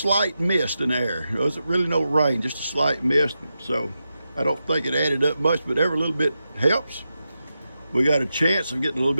mist in the air. It wasn't really no rain, just a slight mist. So I don't think it added up much, but every little bit helps. We got a chance of getting a little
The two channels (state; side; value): inverted; both; correlation -0.89